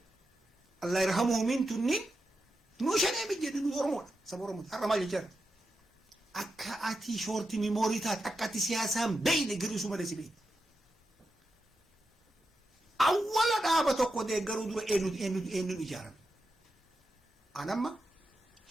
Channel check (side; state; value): both; normal; correlation 0.88